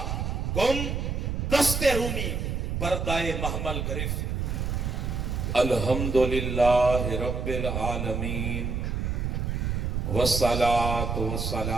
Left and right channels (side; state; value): right; noise; rumble, 1 dB below the sound